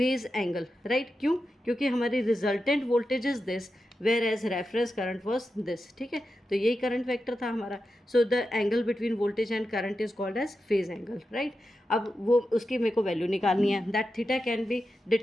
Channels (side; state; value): both; normal; correlation 0.90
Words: angle, right. क्यों? क्योंकि हमारी resultant voltage is this whereas reference current was this, ठीक है। तो यही करंट वेक्टर था हमारा। So the angle between voltage and current is called as phase angle, right. अब वो उसकी मेरे को वैल्यू निकालनी है। That theta can be